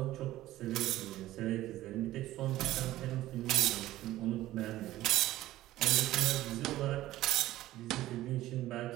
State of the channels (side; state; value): left; quieter; 15.3 dB